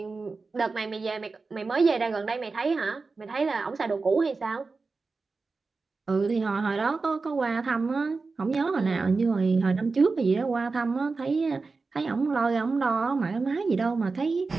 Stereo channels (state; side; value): quieter; left; 4.1 dB